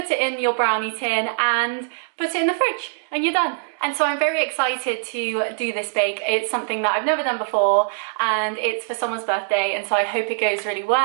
it in your brownie tin and put it in the fridge and you're done. And so I'm very excited to do this bake. It's something that I've never done before and it's for someone's birthday, and so I hope it goes really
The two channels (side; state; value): left; silent; digital silence